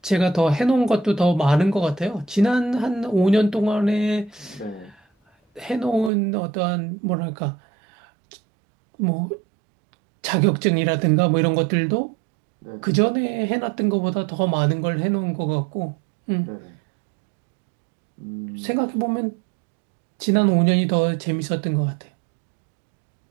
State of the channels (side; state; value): left; drops out; at 6.1 s